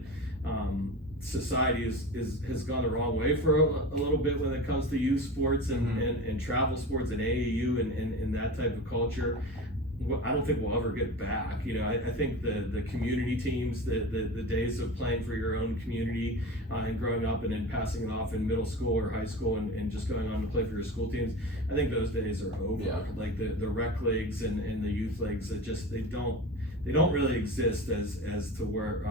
society has gone the wrong way for a little bit when it comes to youth sports and travel sports and AAU and that type of culture. I don't think we'll ever get back. You know, I think the community teams, the days of playing for your own community and growing up and then passing it off in middle school or high school and just going on to play for your school teams, I think those days are over. Yeah. Like the rec leagues and the youth leagues, they don't really exist as to where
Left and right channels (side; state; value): both; normal; correlation 0.30